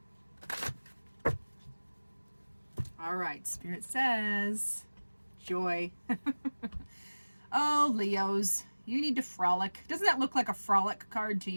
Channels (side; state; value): both; inverted; correlation -1.00